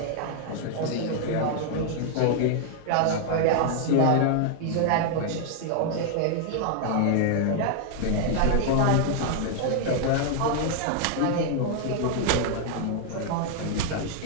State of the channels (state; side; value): different; both; correlation 0.00